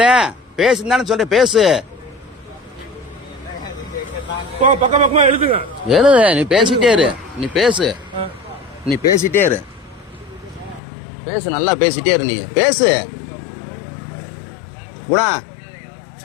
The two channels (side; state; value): right; drops out; at 10.8 s